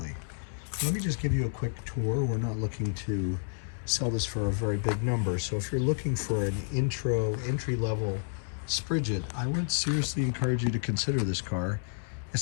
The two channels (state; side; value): silent; right; digital silence